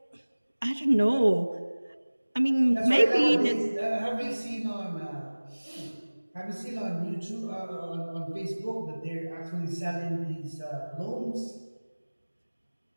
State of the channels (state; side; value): inverted; both; correlation -1.00